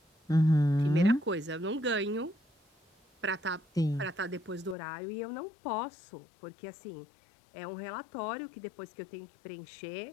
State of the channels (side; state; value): right; drops out; at 4.8 s